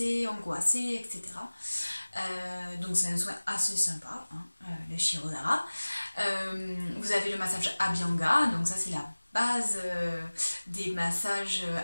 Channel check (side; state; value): both; inverted; correlation -1.00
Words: angoissées, etc. Donc c'est un soin assez sympa, hein, le Shirodhara. Vous avez le massage Abhyanga, donc ça c'est la base des massages